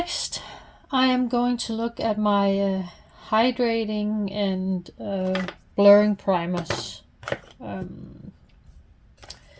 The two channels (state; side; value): identical; both; correlation 1.00